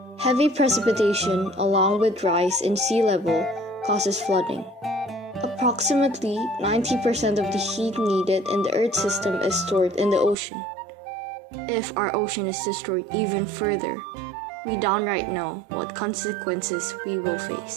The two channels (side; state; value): left; drops out; at 10.4 s